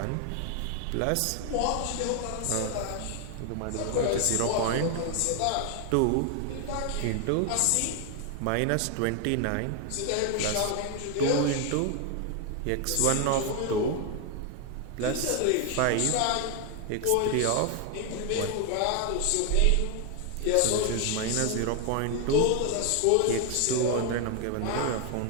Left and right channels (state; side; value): different; both; correlation 0.00